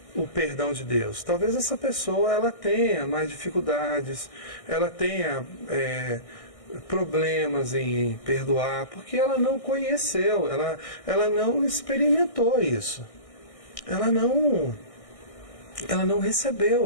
o perdão de Deus, talvez essa pessoa ela tenha mais dificuldades, ela tenha problemas em perdoar, porque ela não conheceu, ela não experimentou isso, ela não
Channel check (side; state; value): right; late; 1.6 ms